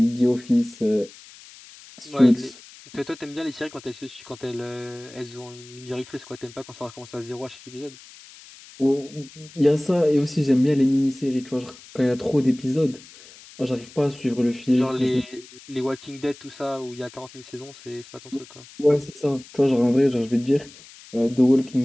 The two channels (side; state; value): left; noise; hiss, 20 dB below the sound